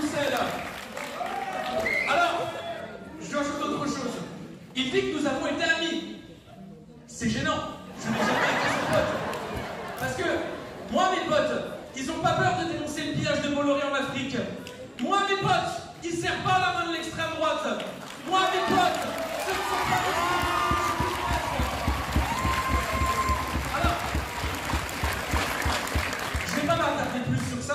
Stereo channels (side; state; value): both; identical; correlation 1.00